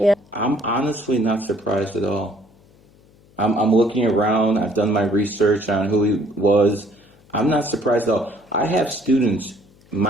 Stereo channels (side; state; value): left; noise; hum, 29 dB below the sound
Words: I'm honestly not surprised at all. I'm looking around. I've done my research on who he was. I'm not surprised at all. I have students,